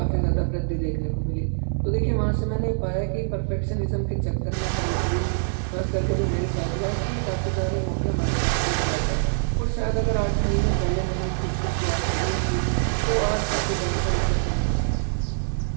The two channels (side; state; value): left; silent; digital silence